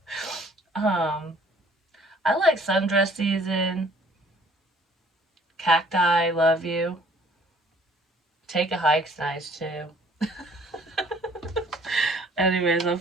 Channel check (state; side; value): normal; both; correlation 0.57